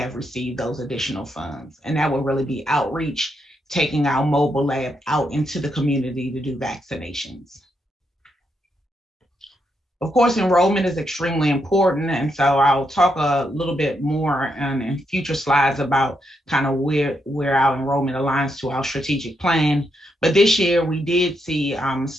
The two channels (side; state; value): both; normal; correlation 0.80